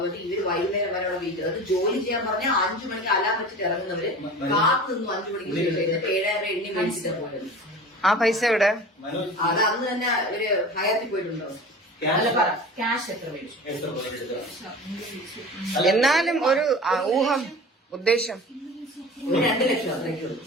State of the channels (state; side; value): normal; both; correlation 0.37